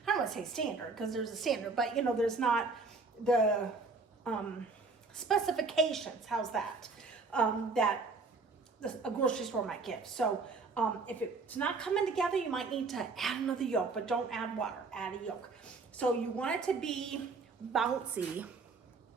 don't want to say standard, because there's a standard, but there's not the specifications, how's that, that a grocery store might give. So if it's not coming together, you might need to add another yolk, but don't add water, add a yolk. So you want it to be bouncy.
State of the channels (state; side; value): quieter; left; 4.2 dB